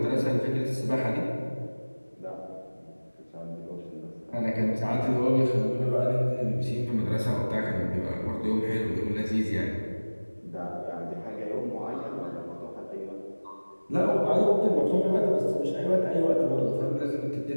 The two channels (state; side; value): inverted; both; correlation -1.00